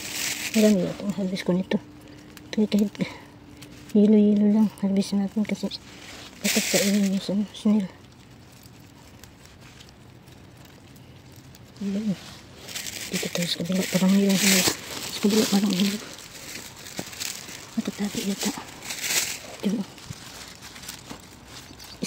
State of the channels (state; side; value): identical; both; correlation 1.00